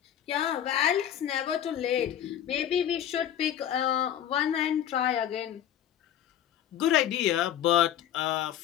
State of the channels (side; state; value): right; quieter; 10.4 dB